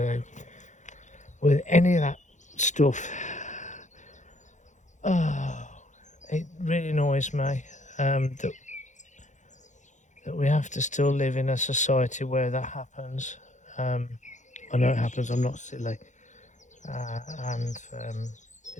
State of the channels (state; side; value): late; right; 0.35 ms